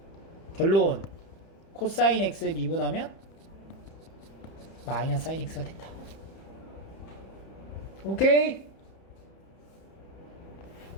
결론. 코사인 x 미분하면 마이너스 사인 x가 된다. 오케이?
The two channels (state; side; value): late; right; 31 ms